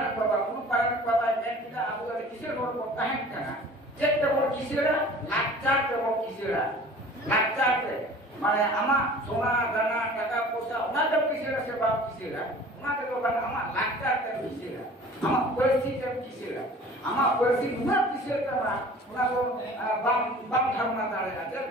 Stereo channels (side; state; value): both; normal; correlation 0.45